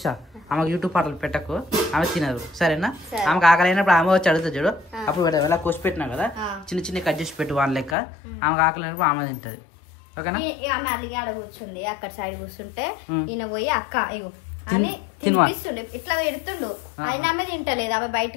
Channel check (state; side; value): drops out; right; at 8.0 s